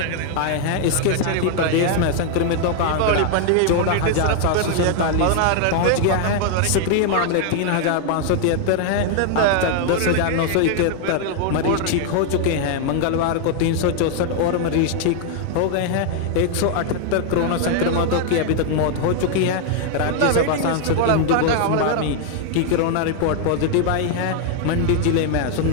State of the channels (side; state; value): both; different; correlation 0.00